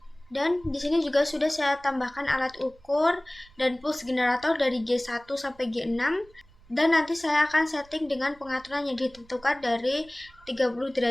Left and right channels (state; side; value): noise; right; rumble, 26 dB below the sound